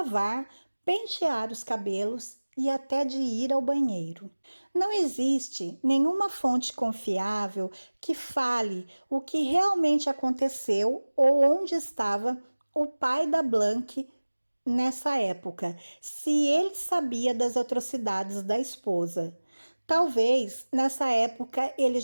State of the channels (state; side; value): inverted; both; correlation -1.00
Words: pentear os cabelos e até de ir ao banheiro. Não existe nenhuma fonte confiável que fale o que realmente aconteceu ou onde estava o pai da Blank nessa época, se ele sabia das atrocidades da esposa. Talvez nessa época ele